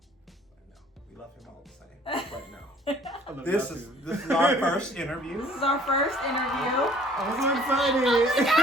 We love him all the same. Right now. This is our first interview. This is our first interview. I'm so excited.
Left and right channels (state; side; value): normal; both; correlation 0.56